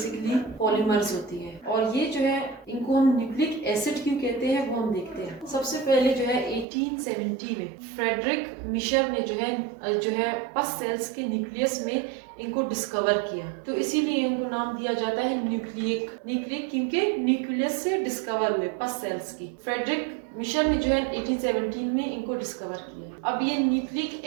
पॉलीमर्स होती है और ये जो है इनको हम न्यूक्लिक एसिड क्यों कहते हैं वो हम देखते हैं। सबसे पहले जो है 1870 में फ्रेडरिक मिशर ने जो है पस सेल्स के न्यूक्लियस में इनको डिस्कवर किया, तो इसीलिए इनको नाम दिया जाता है न्यूक्लिक क्योंकि न्यूक्लियस से डिस्कवर हुए पस सेल्स की। फ्रेडरिक मिशर ने जो है 1817 में इनको डिस्कवर किया। अब ये न्यूक्लिक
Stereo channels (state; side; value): drops out; left; at 6.7 s